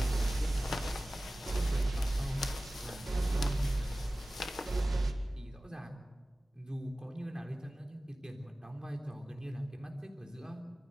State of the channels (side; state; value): both; normal; correlation 0.97